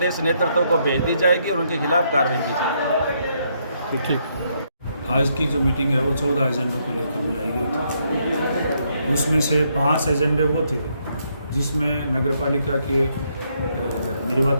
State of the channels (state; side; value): inverted; both; correlation -0.75